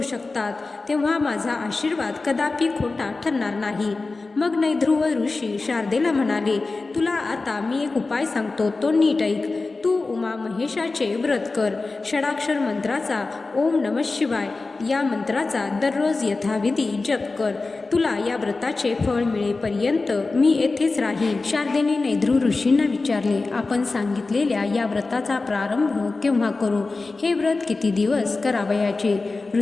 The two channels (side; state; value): right; quieter; 3.6 dB